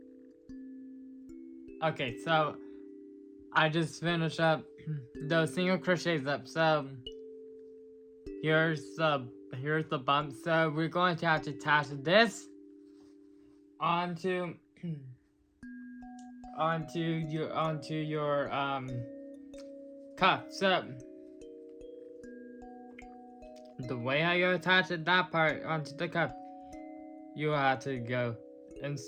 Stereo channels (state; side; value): identical; both; correlation 1.00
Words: so I just finished up those single crochets up. So here's the bump. So we're going to have to attach this onto your cuff. So the way how you attach that part onto the cuff, you have to go